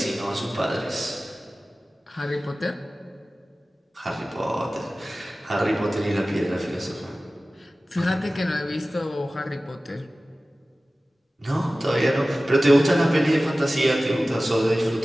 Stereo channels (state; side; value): normal; both; correlation 0.96